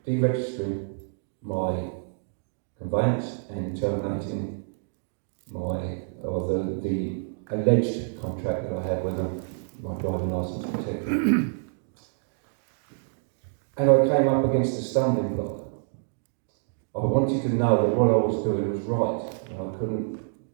deregistering my conveyance and terminating the alleged contract that I had with my driving licence, etc. And I came up against a stumbling block. I wanted to know that what I was doing was right, and I couldn't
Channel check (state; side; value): silent; left; digital silence